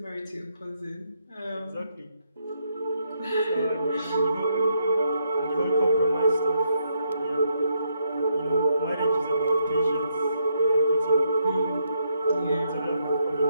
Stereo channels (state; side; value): inverted; both; correlation -0.76